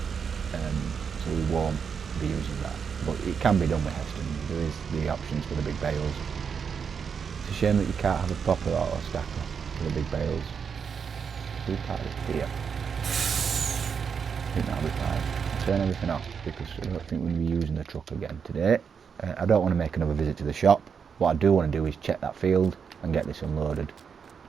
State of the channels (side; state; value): left; quieter; 6.6 dB